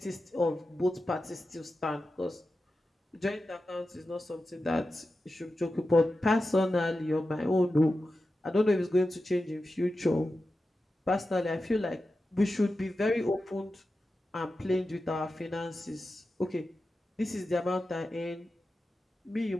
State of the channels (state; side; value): normal; both; correlation 0.92